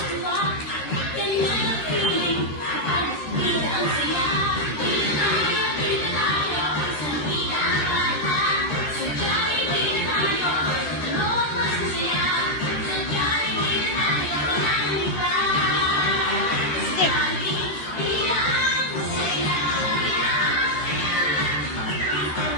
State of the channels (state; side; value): late; right; 13 ms